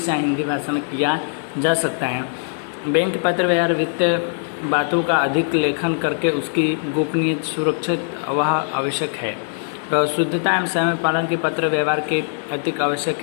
या हिंदी भाषा में किया जा सकता है। बैंक पत्र व्यवहार वित्तीय बातों का अधिक लेखन करके उसकी गोपनीयता सुरक्षित वह आवश्यक है। शुद्धता एवं समय पालन के पत्र व्यवहार के अधिक आवश्यक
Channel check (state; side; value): silent; right; digital silence